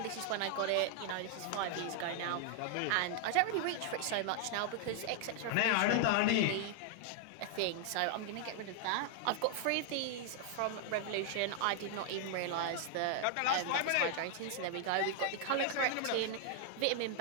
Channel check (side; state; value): both; different; correlation 0.00